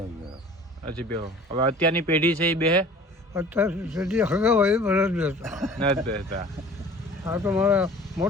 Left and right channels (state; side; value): normal; both; correlation 0.45